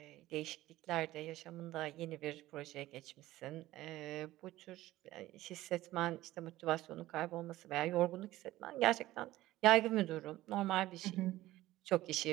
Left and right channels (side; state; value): left; quieter; 16.2 dB